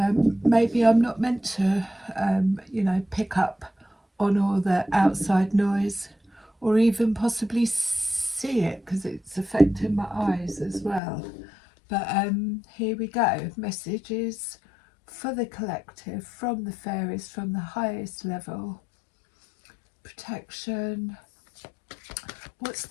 maybe I'm not meant to, pick up on all the outside noise or even possibly see it because it's affecting my eyes as well. But here we go. Messages for the collective from the fairies from the highest level. Protection. What's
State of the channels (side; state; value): right; drops out; at 11.0 s